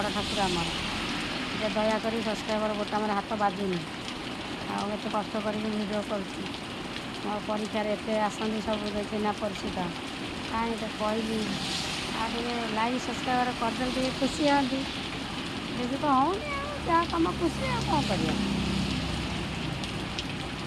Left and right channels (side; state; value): both; identical; correlation 1.00